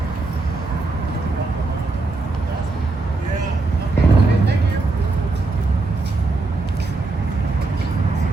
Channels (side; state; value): left; quieter; 3.5 dB